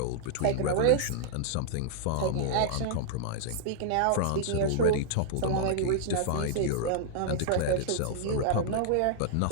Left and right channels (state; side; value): different; both; correlation -0.01